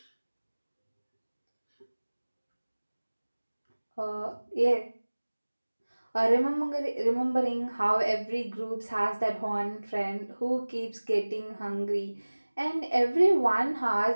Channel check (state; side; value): inverted; both; correlation -1.00